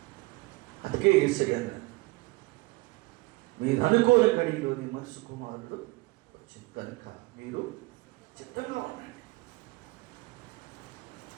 అందుకే యేసయ్య మీరు అనుకోని గడిలోని మనసు కుమారుడు వచ్చింది కనుక మీరు చిత్తంగా ఉండండి.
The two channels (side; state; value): left; quieter; 22.6 dB